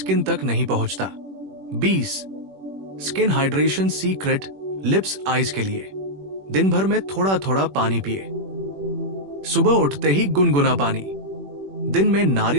तक नहीं पहुंचता। 20 skin hydration secret lips eyes के लिए। दिन भर में थोड़ा थोड़ा पानी पिए। सुबह उठते ही गुनगुना पानी, दिन में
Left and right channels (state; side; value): late; left; 21 ms